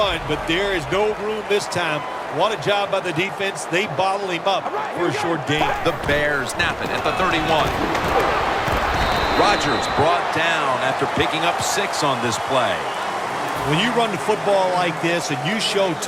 but there is no room this time. What a job by the defense. They bottle him up for a short gain. The Bears snap it at the 31. Rodgers brought down after picking up 6 on this play. When you run the football like this and you show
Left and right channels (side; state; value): both; identical; correlation 1.00